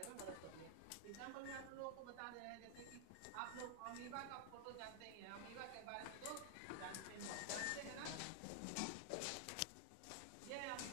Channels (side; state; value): both; different; correlation 0.00